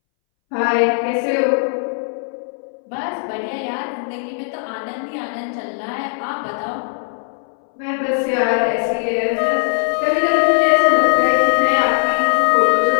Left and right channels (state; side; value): silent; right; 64 dB below the other